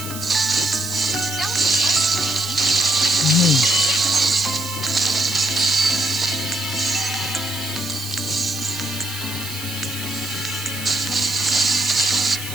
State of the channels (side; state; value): right; noise; hiss, 10 dB below the sound